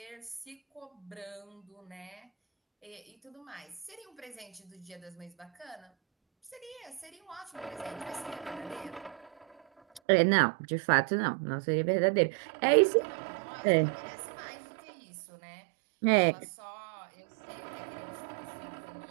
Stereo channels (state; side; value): drops out; left; at 10.0 s